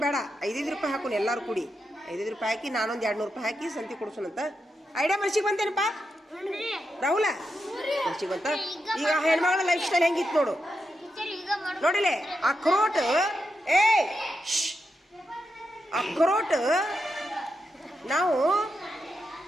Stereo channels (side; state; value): both; normal; correlation 0.86